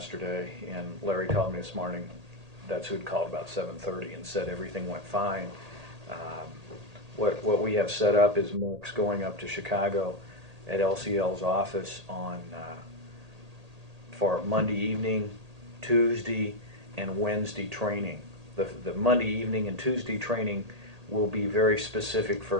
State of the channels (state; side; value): late; left; 1.8 ms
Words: and Larry called me this morning. That's who had called about 7:30 and said everything went fine. What we have set up is Mark's going up to Chicago at LCL's office for Monday evening, Tuesday, and Wednesday training. The Monday evening and Tuesday training will be very specific for